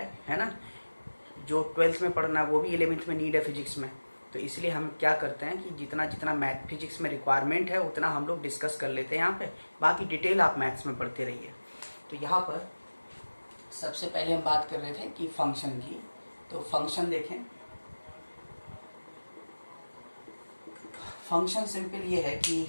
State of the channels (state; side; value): inverted; both; correlation -1.00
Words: ना। जो 12th में पढ़ना है वो भी 11th में नीड है फिजिक्स में। तो इसलिए हम क्या करते हैं कि जितना जितना मैथ फिजिक्स में रिक्वायरमेंट है उतना हम लोग डिस्कस कर लेते हैं यहाँ पे, बाकी डिटेल आप मैथ्स में पढ़ते रहिए। तो यहाँ पर सबसे पहले हम बात कर रहे थे कि फंक्शन की। तो फंक्शन देखें, फंक्शन सिंपल ये है कि